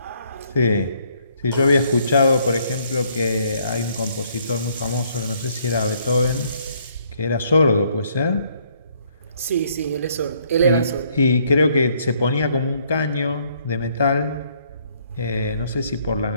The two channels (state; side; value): inverted; both; correlation -0.67